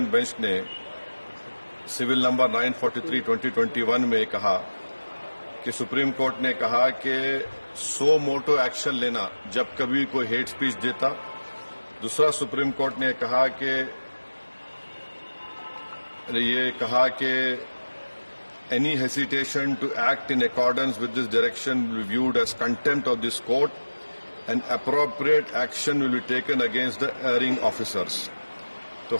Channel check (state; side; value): inverted; both; correlation -1.00